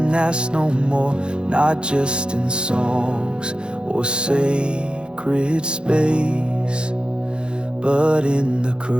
asked no more. Not just in songs or sacred space, but in the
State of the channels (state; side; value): late; left; 0.052 ms